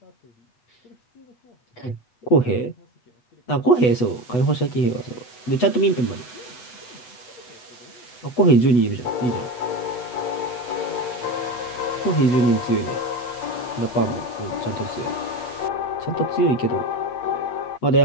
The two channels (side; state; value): right; late; 8.1 ms